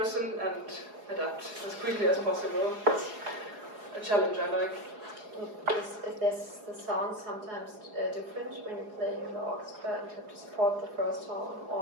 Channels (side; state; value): left; late; 4.8 ms